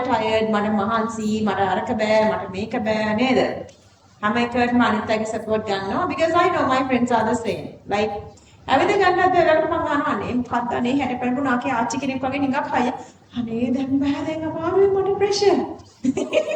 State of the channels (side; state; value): both; identical; correlation 1.00